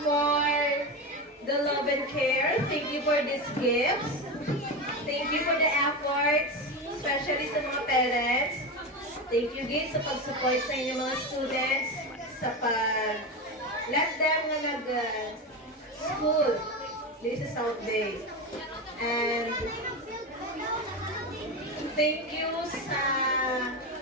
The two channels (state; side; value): normal; both; correlation 0.19